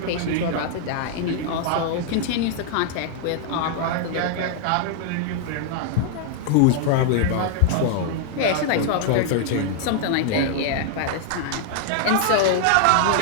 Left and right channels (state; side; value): different; both; correlation -0.01